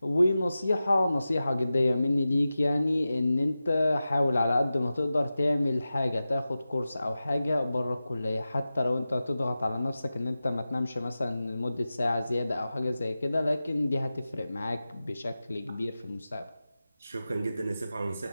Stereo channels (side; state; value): both; inverted; correlation -0.94